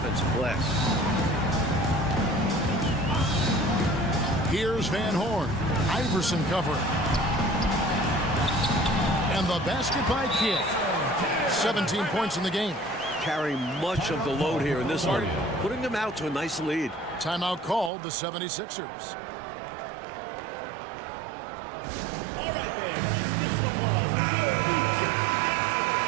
glass. Here's Van Horn. Iverson covering. And the basket by Kidd. 17 points in the game. Carrying much of the load here in this one. Putting them out to a nice lead. Timeout called the 76ers.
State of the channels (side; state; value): left; drops out; at 17.9 s